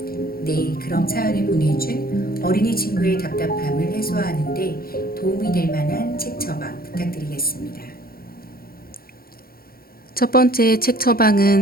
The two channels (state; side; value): late; right; 0.43 ms